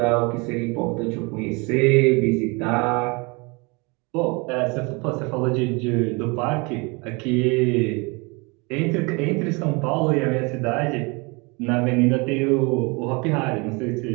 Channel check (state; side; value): quieter; left; 28.7 dB